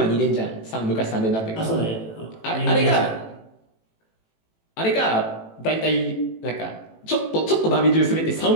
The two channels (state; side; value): late; right; 18 ms